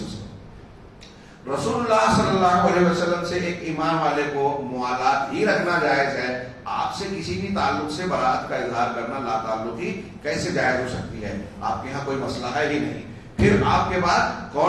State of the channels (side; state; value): both; identical; correlation 1.00